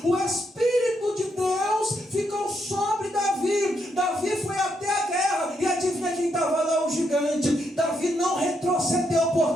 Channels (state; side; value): normal; both; correlation 0.78